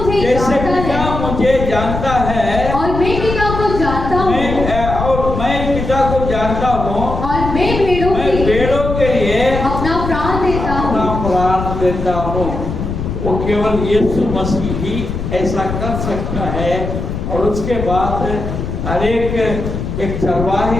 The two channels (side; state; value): left; noise; rumble, 5 dB below the sound